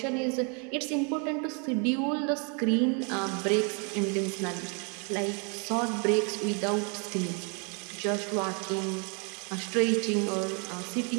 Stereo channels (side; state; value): left; quieter; 36.4 dB